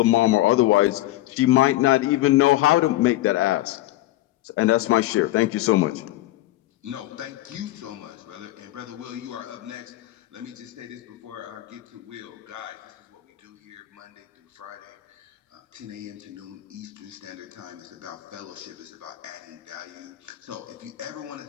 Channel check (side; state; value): right; quieter; 16.4 dB